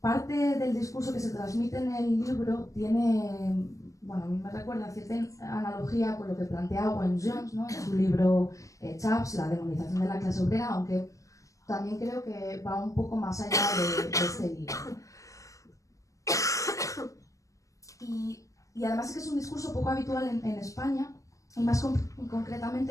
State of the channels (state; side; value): late; right; 0.16 ms